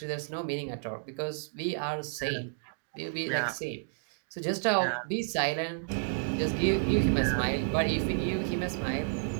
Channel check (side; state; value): left; silent; digital silence